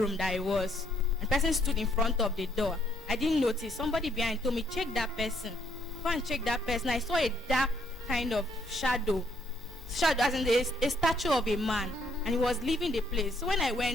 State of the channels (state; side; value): normal; both; correlation 0.70